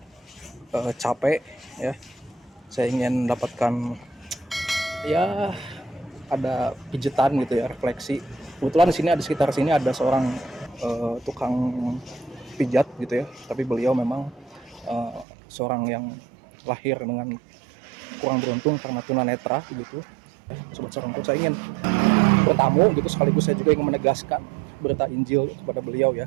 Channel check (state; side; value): drops out; left; at 15.2 s